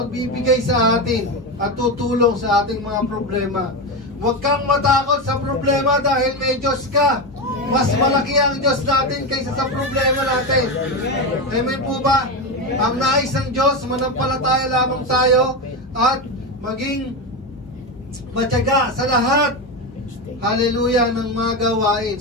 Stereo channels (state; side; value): normal; both; correlation 0.15